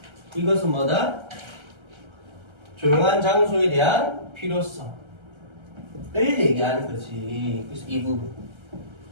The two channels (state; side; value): late; left; 1.3 ms